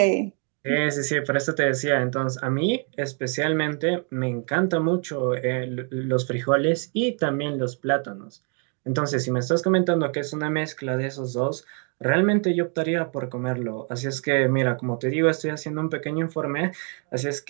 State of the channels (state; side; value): quieter; left; 40.0 dB